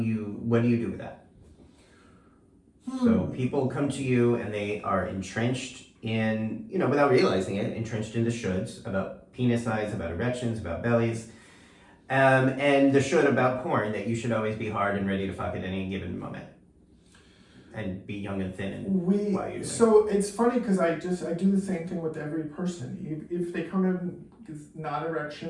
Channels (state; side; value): identical; both; correlation 1.00